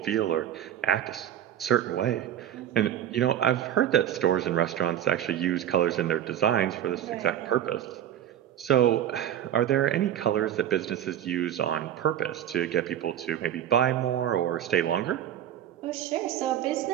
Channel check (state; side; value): quieter; left; 10.8 dB